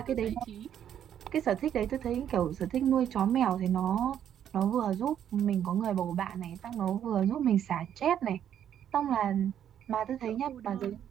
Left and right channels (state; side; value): quieter; left; 9.8 dB